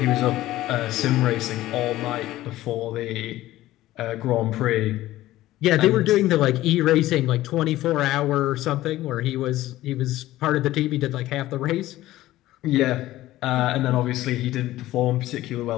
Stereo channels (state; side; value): quieter; right; 15.7 dB